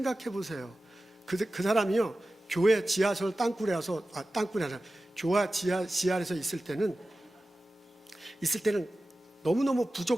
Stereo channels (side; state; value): both; normal; correlation 0.95